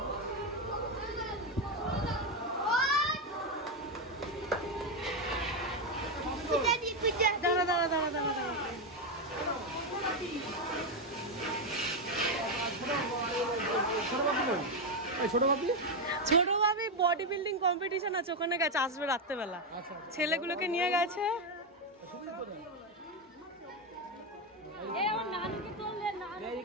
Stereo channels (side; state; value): both; normal; correlation 0.07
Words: ছোট ভাবি বডি বিল্ডিং কম্পিটিশন আছে, ওখানে গেছে, আসবে রাত্রেবেলা। ছেলেগুলোকে নিয়ে গেছে।